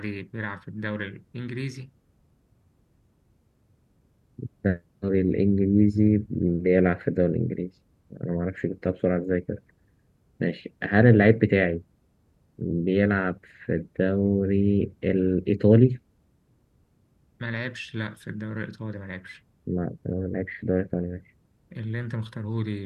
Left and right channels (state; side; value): identical; both; correlation 1.00